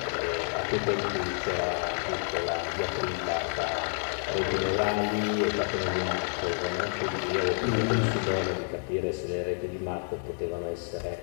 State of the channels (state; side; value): silent; right; 58 dB below the other